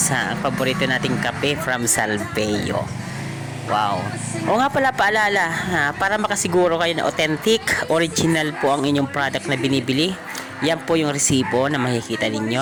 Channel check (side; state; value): both; identical; correlation 1.00